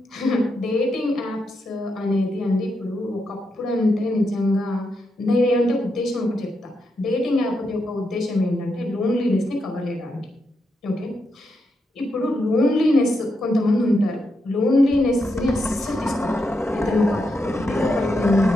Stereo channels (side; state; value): both; normal; correlation 0.83